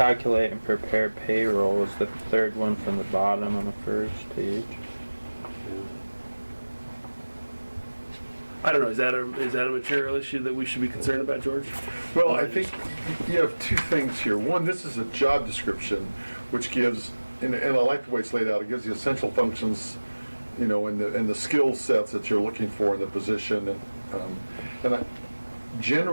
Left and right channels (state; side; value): inverted; both; correlation -1.00